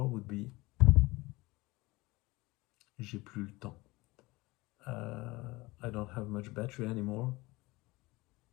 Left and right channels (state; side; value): quieter; right; 21.7 dB